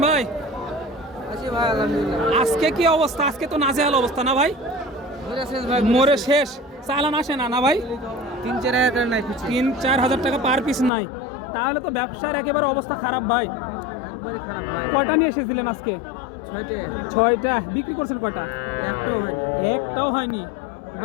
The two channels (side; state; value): right; drops out; at 10.9 s